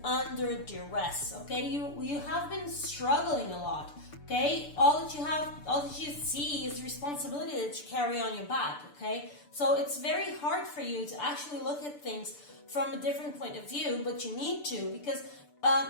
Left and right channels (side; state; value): right; late; 6.8 ms